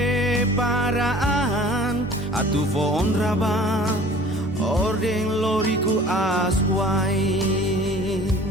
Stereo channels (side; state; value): both; normal; correlation 0.47